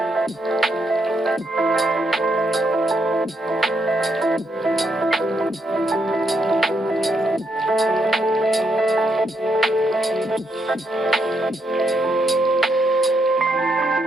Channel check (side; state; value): both; normal; correlation 0.77